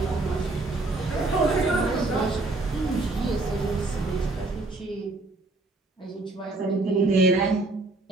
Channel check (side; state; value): left; quieter; 3.1 dB